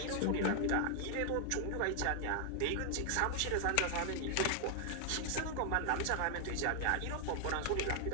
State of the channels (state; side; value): different; both; correlation 0.00